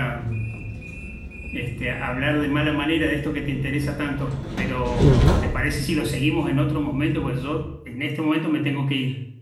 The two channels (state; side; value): identical; both; correlation 1.00